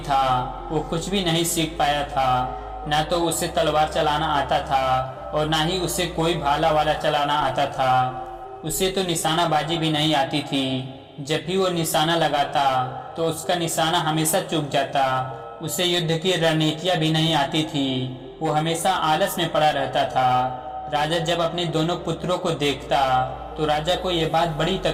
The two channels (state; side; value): identical; both; correlation 1.00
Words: वो कुछ भी नहीं सीख पाया था। ना तो उसे तलवार चलाना आता था और ना ही उसे कोई भाला वाला चलाना आता था। उसे तो निशानाबाजी भी नहीं आती थी। जब भी वो निशाना लगाता तो उसका निशाना हमेशा चूक जाता। उसे युद्ध की रणनीतियां भी नहीं आती थी। वो हमेशा आलस में पड़ा रहता था। राजा जब अपने दोनों पुत्रों को देखता तो राजा को ये बात बड़ी